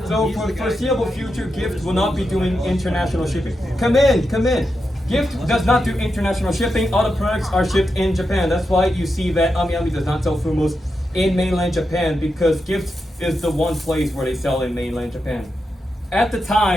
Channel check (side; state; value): both; normal; correlation 0.87